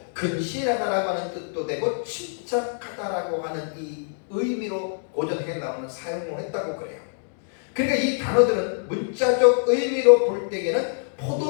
근신하다라고 하는 뜻도 되고 침착하다라고 하는 이 의미로 고전 헬라어는 사용을 했다고 그래요. 그러니까 이 단어들은 문자적 의미로 볼 때에는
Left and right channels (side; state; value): right; silent; digital silence